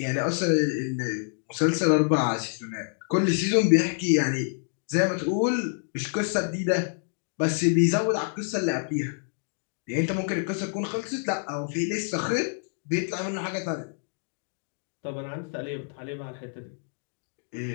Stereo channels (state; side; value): silent; right; digital silence